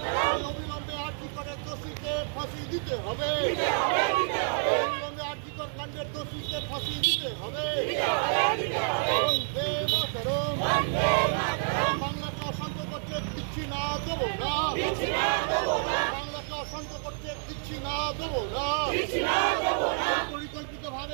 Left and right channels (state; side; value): silent; left; 59 dB below the other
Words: অবিলম্বে আর্থিকরের দোষীকে ফাঁসি দিতে হবে। অবিলম্বে আর্থিকর কাণ্ডের দোষীকে ফাঁসি দিতে হবে। বন্দে মাতরম। বাংলাকে অশান্ত করতে দিচ্ছি না, দেবো না। বাংলাকে অশান্ত করতে দিচ্ছি না, দেবো না। পরিকল্পিত